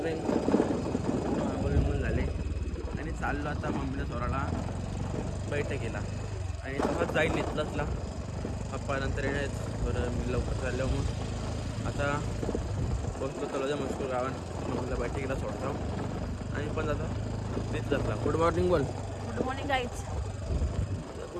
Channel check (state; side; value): identical; both; correlation 1.00